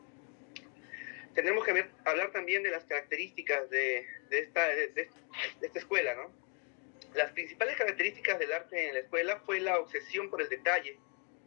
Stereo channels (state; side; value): quieter; right; 35.3 dB